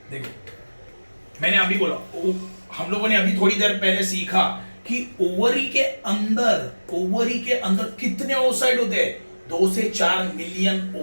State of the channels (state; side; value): inverted; both; correlation -1.00